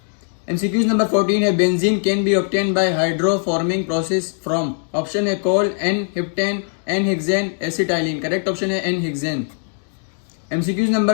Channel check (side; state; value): right; silent; 60 dB below the other